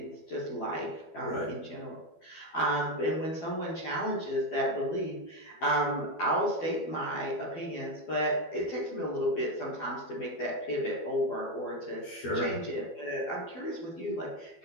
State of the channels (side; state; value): right; late; 12 ms